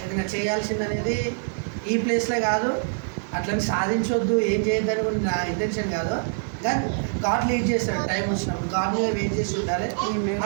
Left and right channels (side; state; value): left; silent; digital silence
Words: ఏదైనా చేయాల్సింది అనేది ఈ ప్లేస్లో కాదు. అట్లని సాధించవద్దు ఏం చేయొద్దని కూడా నా ఇంటెన్షన్ కాదు. కానీ గాడ్ లీడ్ చేస్తాడు టైం వచ్చినప్పుడు. గాడ్ మీద వెయిట్ చేసి ఉండాలి.